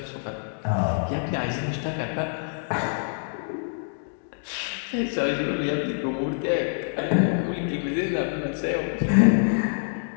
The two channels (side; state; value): right; silent; digital silence